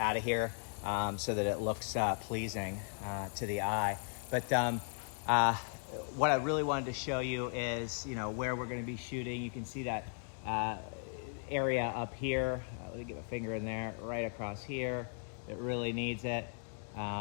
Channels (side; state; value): right; silent; 53 dB below the other